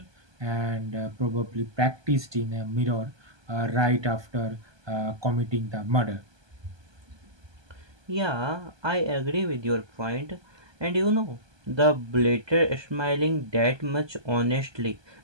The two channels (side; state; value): left; late; 1.2 ms